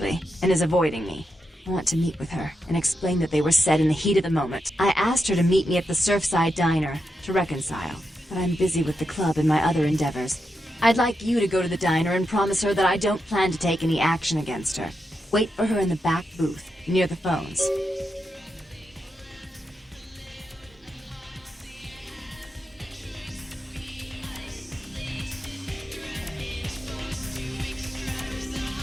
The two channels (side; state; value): both; normal; correlation 0.86